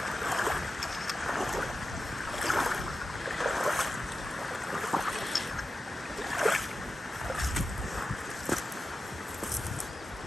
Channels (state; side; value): normal; both; correlation 0.92